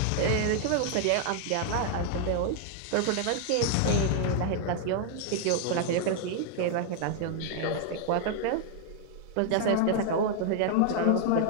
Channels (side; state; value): both; different; correlation 0.00